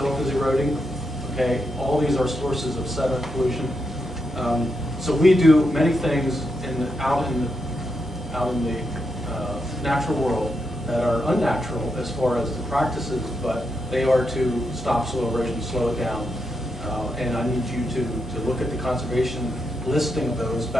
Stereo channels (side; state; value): both; normal; correlation 0.83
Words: is eroding. Okay, all these are sources of sediment pollution. So we do many things out in the natural world that are unnatural as far as the practices, but they are to stop soil erosion, slow it down. And I need you to look at the conservation listing of those